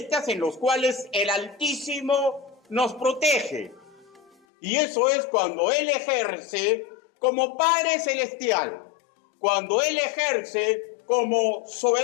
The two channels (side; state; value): right; drops out; at 4.3 s